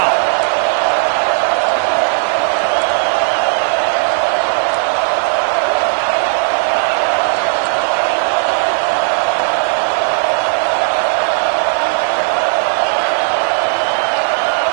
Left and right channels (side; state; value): left; silent; digital silence